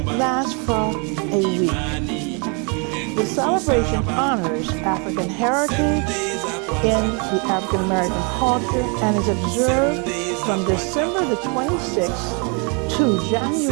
lasts for a week. The celebration honors African heritage in the African American culture and is observed from December the 26th to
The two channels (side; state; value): left; quieter; 35.0 dB